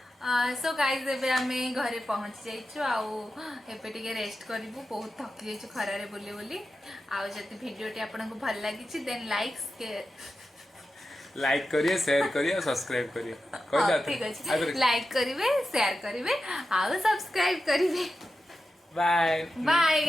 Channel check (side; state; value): both; normal; correlation 0.91